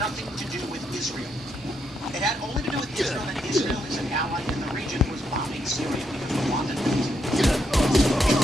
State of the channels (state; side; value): normal; both; correlation 0.78